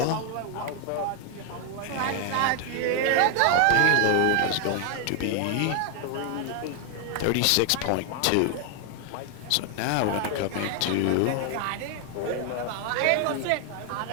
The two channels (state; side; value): different; both; correlation 0.00